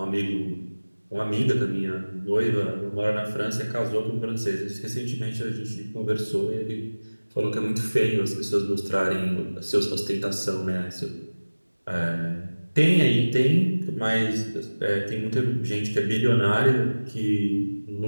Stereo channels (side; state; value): both; inverted; correlation -1.00